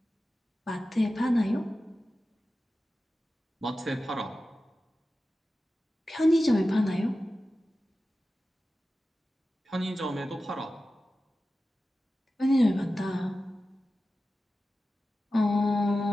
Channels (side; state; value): both; normal; correlation 0.94